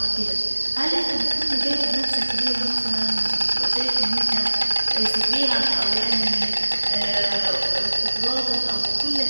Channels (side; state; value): both; inverted; correlation -1.00